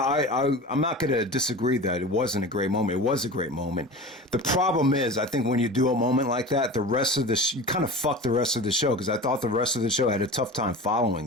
not going to disagree that it wasn't a great moment. It was a great moment. The problem is, I think when you do a moment like that, the rest of you kind of fuck the rest of the show, because I thought the rest of the show had a tough time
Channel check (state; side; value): normal; both; correlation 0.33